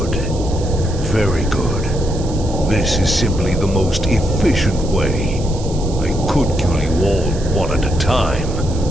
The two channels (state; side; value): noise; right; hiss, 16 dB below the sound